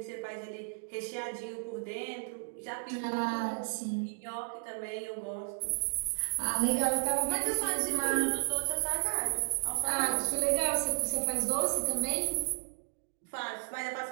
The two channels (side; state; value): left; silent; digital silence